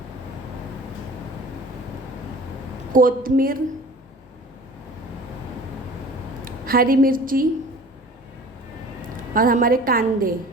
कोतमीर, हरी मिर्ची और हमारे कांदे।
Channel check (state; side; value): normal; both; correlation 0.44